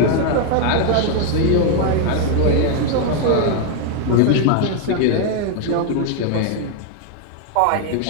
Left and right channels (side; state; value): both; different; correlation 0.00